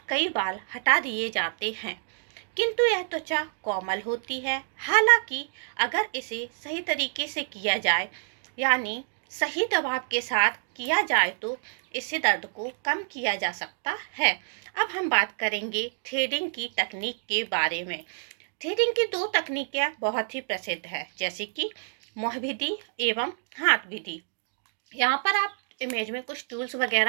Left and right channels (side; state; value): left; silent; digital silence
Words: कई बाल हटा दिए जाते हैं, किंतु यह त्वचा कोमल होती है। हालांकि अगर इसे सही तरीके से किया जाए, यानी सही दबाव के साथ किया जाए, तो इससे दर्द को कम किया जा सकता है। अब हम बात करेंगे थ्रेडिंग की तकनीक के बारे में। थ्रेडिंग की 2 तकनीकें बहुत ही प्रसिद्ध है, जैसे कि मुँह विधि एवं हाथ विधि। यहाँ पर आप इमेज में कुछ टूल्स